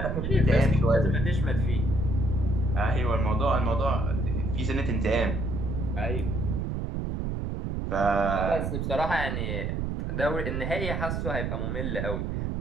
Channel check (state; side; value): noise; right; rumble, 2 dB below the sound